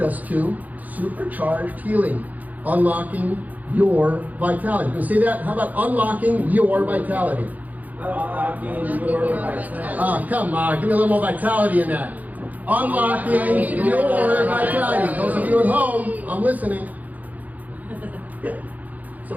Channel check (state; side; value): late; left; 0.079 ms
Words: to supercharged healing, unlocking your vitality. You can say that? How about unlocking your vitality? Unlocking your vitality. Come on, give me a little more vitality in that. Unlocking your vitality. Those of you at home, I'm listening. So